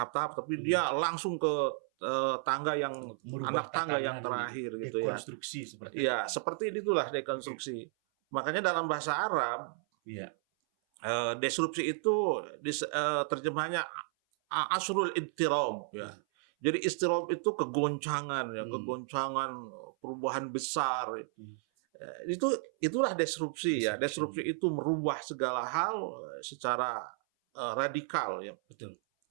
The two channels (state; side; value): silent; left; 56 dB below the other